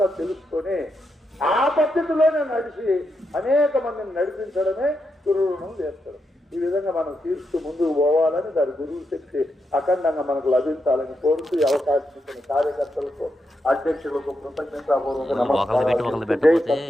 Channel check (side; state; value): both; normal; correlation 0.83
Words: తెలుసుకొని ఆ పద్ధతిలోనే నడిచి అనేక మందిని నడిపించడమే గురు రుణం తీర్చడం. ఈ విధంగా మనం తీర్చు ముందుకు పోవాలని దాని గురువు శక్తి అఖండంగా మనకు లభించాలని కోరుతూ ఈ అవకాశం ఇచ్చిన కార్యకర్తలకు, అధ్యక్షులకు కృతజ్ఞతాపూర్వక నమస్కారాలు. జై